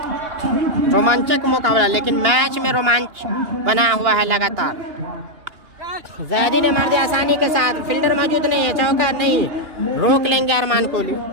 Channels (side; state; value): left; late; 2.9 ms